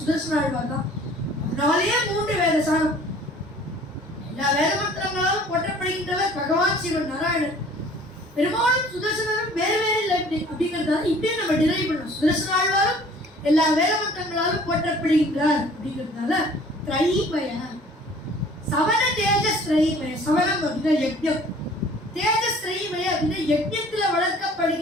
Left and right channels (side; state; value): both; normal; correlation 0.51